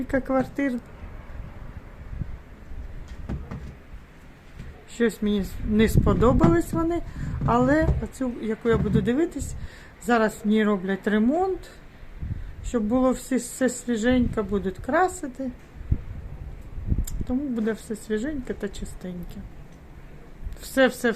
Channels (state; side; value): identical; both; correlation 1.00